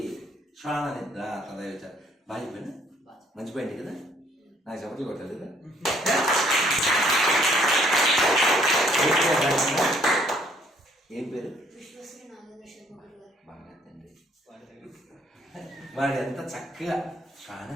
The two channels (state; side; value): normal; both; correlation 0.64